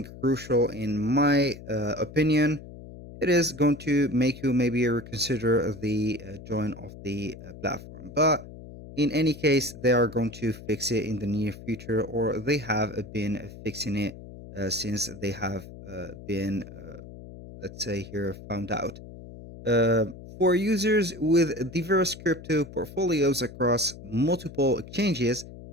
crucial in my opinion, it is going to make you maybe reconsider the join of the platform. But in any case, they are going to fix it in the near future, or they have been fixing it since they have been, let's say here, found out. Uh, for users with diverse crypto portfolios across multiple exchanges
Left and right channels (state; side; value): noise; left; hum, 15 dB below the sound